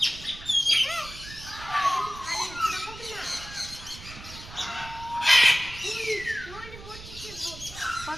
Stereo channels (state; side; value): noise; right; rumble, 15 dB below the sound